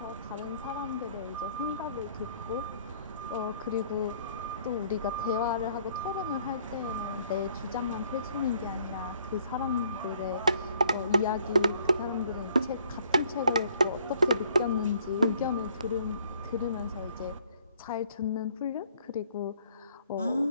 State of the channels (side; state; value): both; inverted; correlation -0.62